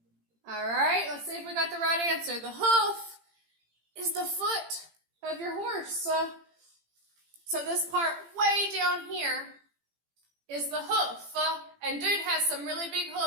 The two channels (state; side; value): late; left; 18 ms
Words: All right, let's see if we got the right answer. The hoof is the foot of your horse. So this part way down here is the hoof. And dude has some really big